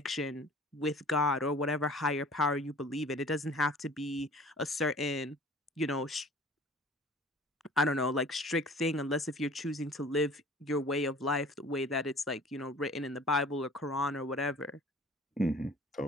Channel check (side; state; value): both; normal; correlation 0.47